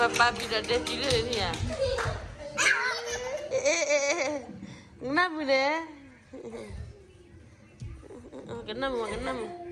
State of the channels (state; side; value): identical; both; correlation 1.00